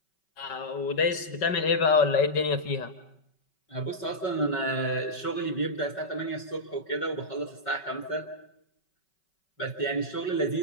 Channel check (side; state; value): right; late; 5.3 ms